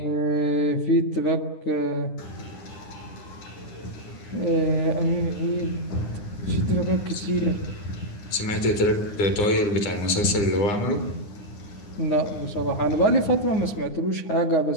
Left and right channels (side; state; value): right; late; 9.8 ms